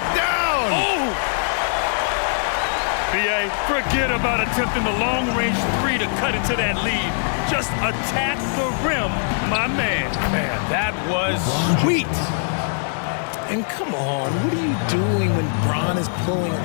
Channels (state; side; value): silent; right; digital silence